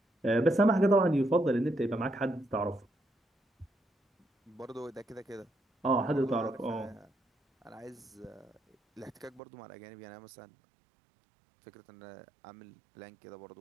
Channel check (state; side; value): drops out; left; at 9.4 s